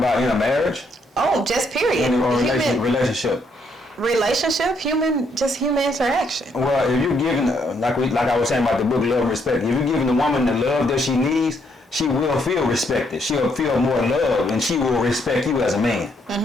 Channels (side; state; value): both; normal; correlation 0.73